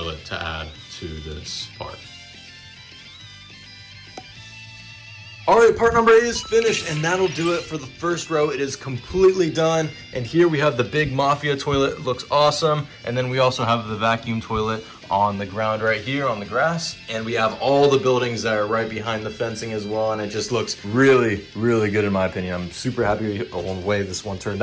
to add to this part. Alright, part number 8 is finished, and that'll do it for the first row. It is completely done, and here we have the big Mafia toilet. It looks awesome, and then we also have the vacuum toilet on the ground right here on the grass, and we have all the buildings that are right behind the fencing as well, and it just looks really, really good in my opinion. I'm super happy with the way this one turned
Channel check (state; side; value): identical; both; correlation 1.00